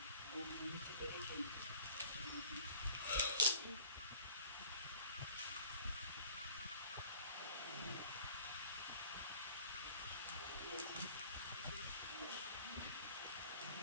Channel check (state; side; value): inverted; both; correlation -0.50